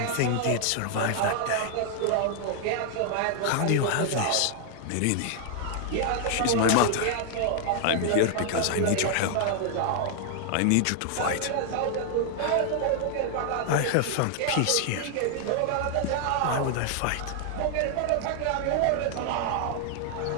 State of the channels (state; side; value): different; both; correlation 0.00